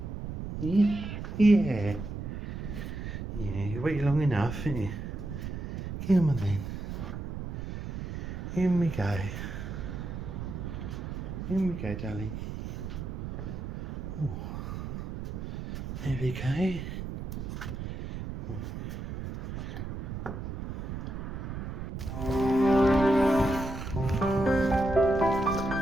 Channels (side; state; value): right; noise; rumble, 6 dB below the sound